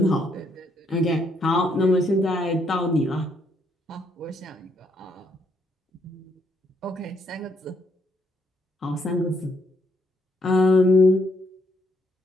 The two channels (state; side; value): normal; both; correlation 0.73